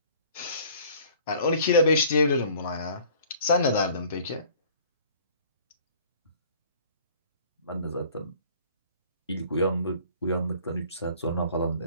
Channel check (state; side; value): inverted; both; correlation -0.52